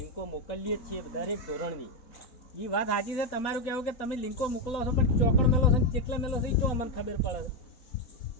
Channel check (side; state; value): right; late; 4.2 ms